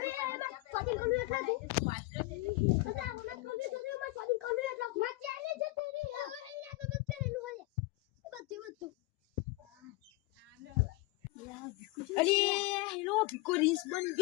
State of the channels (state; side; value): quieter; right; 21.2 dB